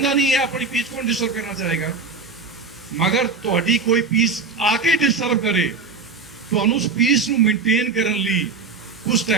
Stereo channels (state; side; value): quieter; left; 4.5 dB